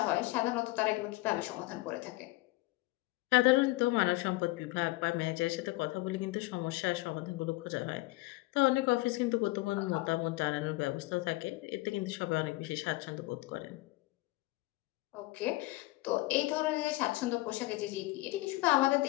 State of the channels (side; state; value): right; quieter; 20.7 dB